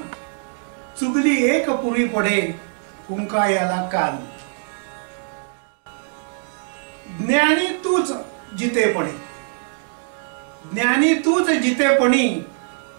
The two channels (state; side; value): silent; left; digital silence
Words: चुगली एक पुरी पडे फुंका याला कान। ज्ञानी तूच जितेपणी, ज्ञानी तूच जितेपणी